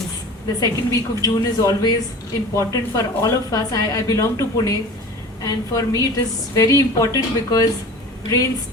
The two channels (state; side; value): normal; both; correlation 0.39